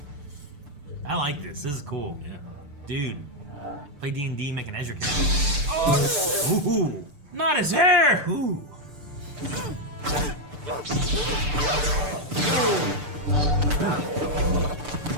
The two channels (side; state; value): left; late; 6.8 ms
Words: I like this. This is cool. Yeah. Dude, play D&D, make an Ezra character. Oh! Ooh! Not his hair! Ooh.